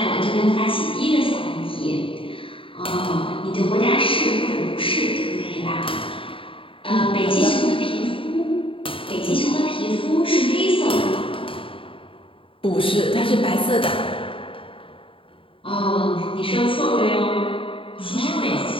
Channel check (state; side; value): late; right; 0.26 ms